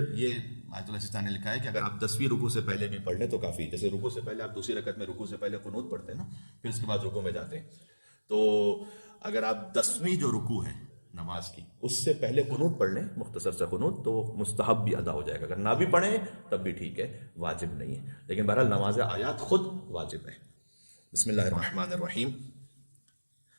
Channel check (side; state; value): both; inverted; correlation -1.00